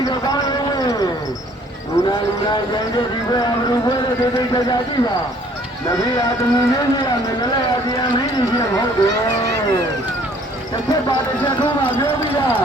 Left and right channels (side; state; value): both; normal; correlation 0.58